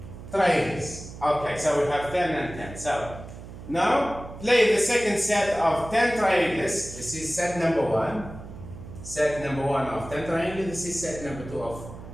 triangles. Okay, so we have 10 and 10. So now play the second set of 10 triangles. This is set number 1. Set number 1 of 10 triangles. This is set number 2 of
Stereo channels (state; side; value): noise; right; hum, 13 dB below the sound